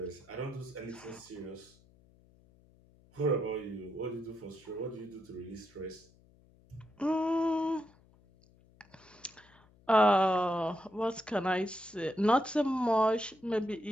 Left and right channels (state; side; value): noise; left; hum, 29 dB below the sound